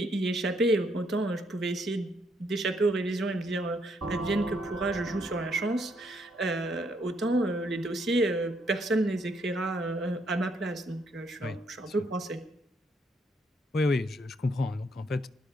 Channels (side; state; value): both; normal; correlation 0.72